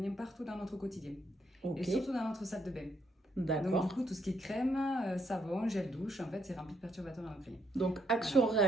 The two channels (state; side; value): normal; both; correlation 0.73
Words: partout dans notre quotidien. Et Ok, surtout dans notre salle de bain. Donc du d'accord. coup tout ce qui est crème, savon, gel douche, en fait c'est rempli de perturbateurs endocriniens. Donc,